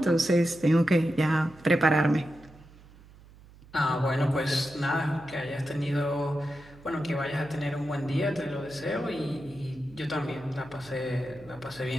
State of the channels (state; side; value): noise; right; hum, 23 dB below the sound